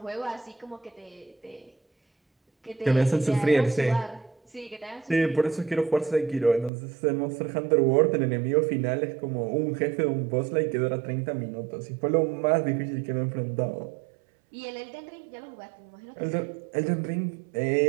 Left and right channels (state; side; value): drops out; left; at 6.7 s